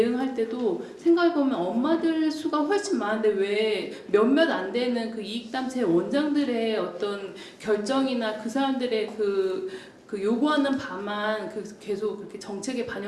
때도 생각해 보면 엄마들 수가 훨씬 많은데 왜 몇몇 안 되는 그 이익단체 원장들의 어떤 결정이나 그 사람들의 그 요구하는 바만 계속 그렇게 정책에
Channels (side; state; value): both; identical; correlation 1.00